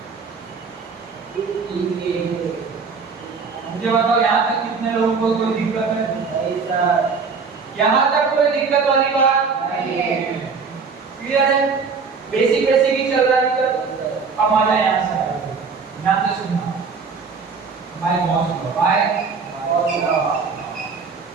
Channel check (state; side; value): quieter; left; 5.1 dB